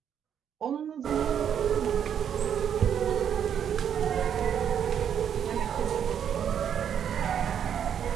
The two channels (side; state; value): left; quieter; 8.7 dB